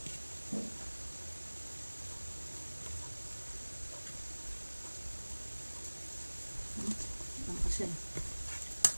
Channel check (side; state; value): both; inverted; correlation -1.00